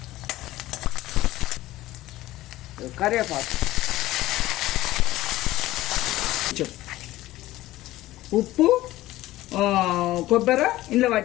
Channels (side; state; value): right; quieter; 16.4 dB